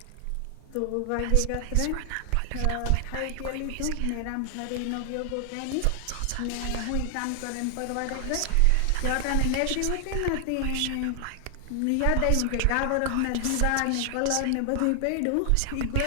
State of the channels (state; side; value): different; both; correlation 0.00